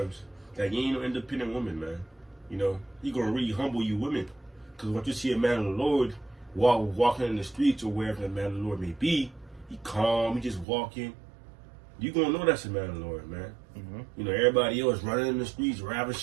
that you ain't no independent woman, man. You know, He gonna really humble you women, because once you see a man of the Lord walking in the streets or wherever the man of the Lord may be, he calm, he just walking. You gonna know that's a man of the Lord, man. Mm-hmm. You know, everybody else running in the streets,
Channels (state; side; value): drops out; left; at 10.7 s